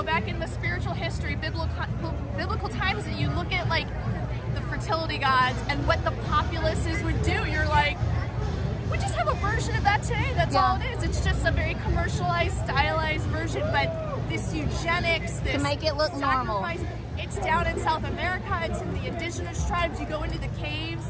back in the spiritual history, biblical times, and you look at like the fertility gods and what the populaces would do, you're like, we just have a version of that today. That's all it is. It's just a very commercialized, stylized version. But this eugenics, this to make it look normal. It's down in South America. It's in the indigenous tribes. You go into the caves.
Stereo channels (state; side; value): identical; both; correlation 1.00